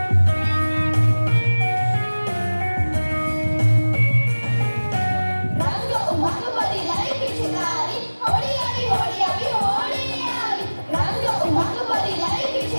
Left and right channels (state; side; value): inverted; both; correlation -1.00